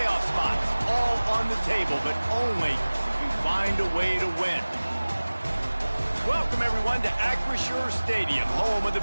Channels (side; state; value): both; inverted; correlation -1.00